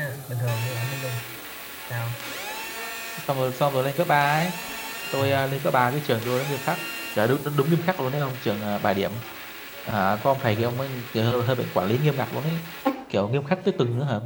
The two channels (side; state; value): both; identical; correlation 1.00